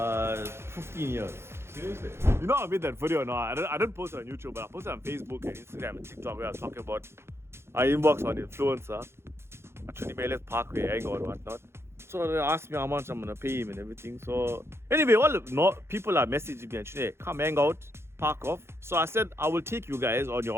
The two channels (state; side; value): late; left; 0.12 ms